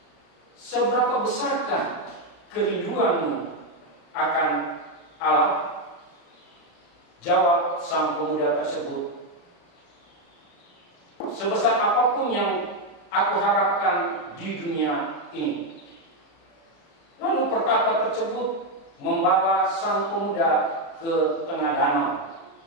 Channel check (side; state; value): right; late; 36 ms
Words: "Seberapa besarkah kerinduanmu akan Allah?" Jawab sang pemuda tersebut, "Sebesar apapun yang aku harapkan di dunia ini." Lalu pertapa tersebut membawa sang pemuda ke tengah danau.